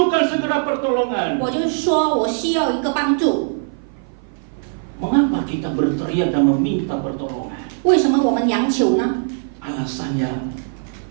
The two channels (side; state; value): left; silent; 56 dB below the other